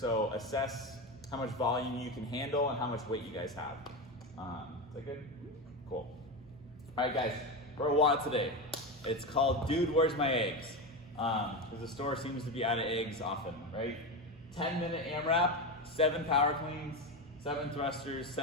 assess how much volume you can handle and how much weight you guys have. Is that good? Cool. All right, guys, for a WOD today. It's called Dude, Where's My Eggs? Because the store seems to be out of eggs often, right? 10-minute AMRAP, 7 power cleans, 7 thrusters,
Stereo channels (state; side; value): normal; both; correlation 0.17